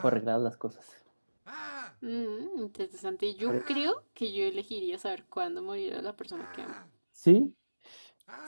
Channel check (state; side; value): inverted; both; correlation -1.00